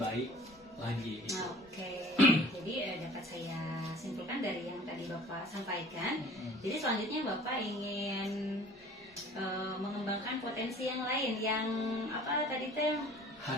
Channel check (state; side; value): normal; both; correlation 0.48